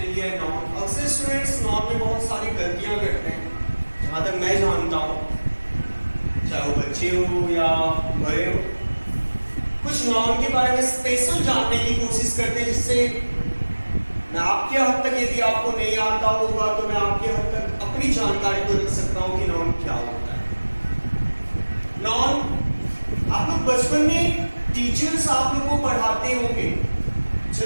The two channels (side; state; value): both; inverted; correlation -1.00